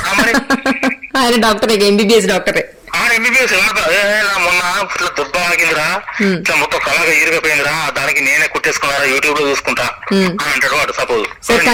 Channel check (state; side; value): identical; both; correlation 1.00